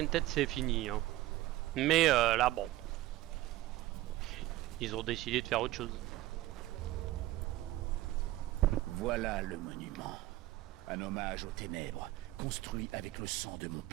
tête, c'est fini. Hein. Mais là, bon. Ils ont décidé de faire autre chose. Voilà le monument. Un hommage aux ténèbres, construit avec le sang de mon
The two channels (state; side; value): quieter; left; 16.3 dB